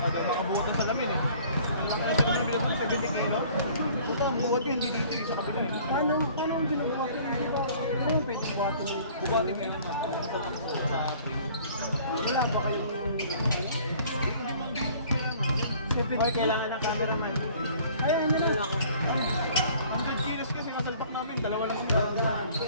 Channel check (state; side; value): inverted; both; correlation -0.52